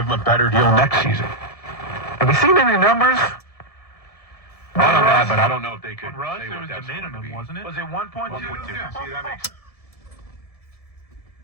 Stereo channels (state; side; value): late; right; 1.7 ms